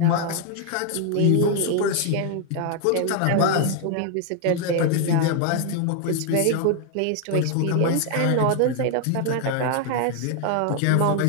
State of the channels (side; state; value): both; different; correlation 0.00